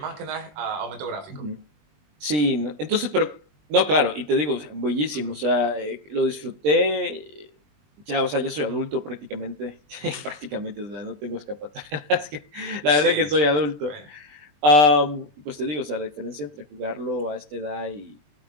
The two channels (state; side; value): late; left; 20 ms